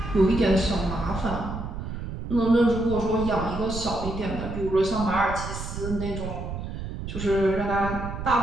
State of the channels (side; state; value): right; noise; rumble, 7 dB below the sound